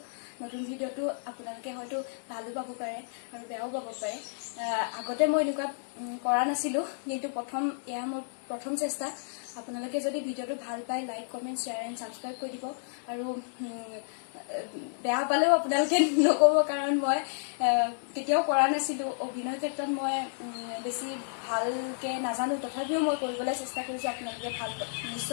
নতুন ভিডিঅ'টো আপোনালোকে হয়তো ভালো পাব পাৰে আৰু বেয়াও পাব পাৰে আগতে মই এনেকুৱা কৰা নাছিলোঁ কিন্তু এয়া মোৰ প্ৰথম চেষ্টা আপোনালোকে যদি ভিডিঅ'টো ভাল পায় like comment share and subscribe কৰি দিব আৰু বেয়া পালেও আপোনালোকে নক'ব কাৰণ মই কেতিয়াও কৰা নাছিলোঁ অভিনয় ক্ষেত্ৰত মই বেছি ভালকৈ নাজানো তথাপিও মই কৰিবলৈ চেষ্টা কৰিছোঁ আপোনালোকে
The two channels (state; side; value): silent; right; digital silence